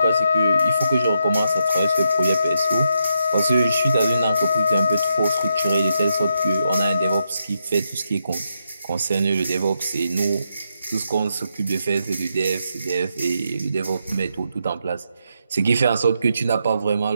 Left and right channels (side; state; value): both; inverted; correlation -0.81